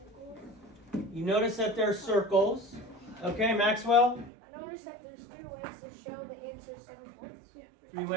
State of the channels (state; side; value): drops out; left; at 4.3 s